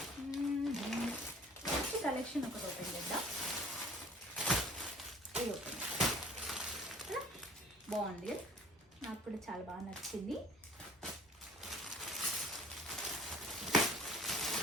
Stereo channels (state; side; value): normal; both; correlation 0.51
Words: సో కలెక్షన్ ఒకటి ఓపెన్ చేద్దాం. ఇది ఓపెన్ బాగుంది, నాకు కూడా చాలా బాగా నచ్చింది.